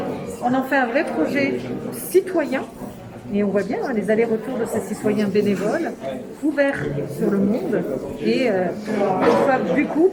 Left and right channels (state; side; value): identical; both; correlation 1.00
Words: On en fait un vrai projet citoyen. Et on voit bien les allers-retours de ces citoyens bénévoles, ouverts sur le monde, et une fois du coup,